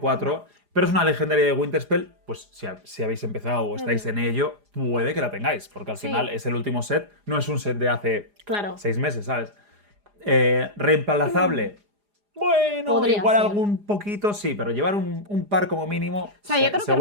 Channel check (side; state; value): left; late; 4.9 ms